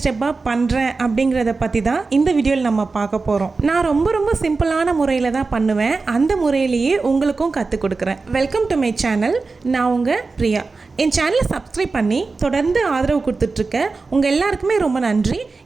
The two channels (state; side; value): quieter; left; 4.0 dB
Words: ஸ்டெப்பாக பண்ணுறேன் அப்படிங்கிறத பற்றி தான் இந்த வீடியோவில் நம்ம பார்க்க போகிறோம். நான் ரொம்ப சிம்பிளான முறையில் தான் பண்ணுவேன். அந்த முறையிலேயே உங்களுக்கும் கற்றுக் கொடுக்குறேன். Welcome to my channel. நான் உங்கள் பிரியா. என் சேனலை சப்ஸ்கிரைப் பண்ணி தொடர்ந்து ஆதரவு கொடுத்துட்ருக்க உங்கள் எல்லாருக்குமே ரொம்ப நன்றி.